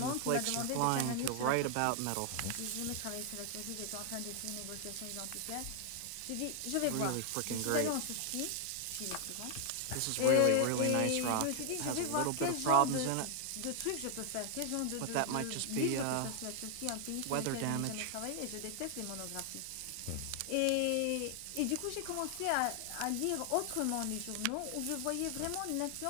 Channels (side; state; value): both; different; correlation 0.00